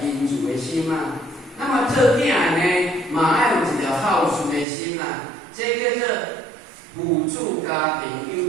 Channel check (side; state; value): left; drops out; at 4.7 s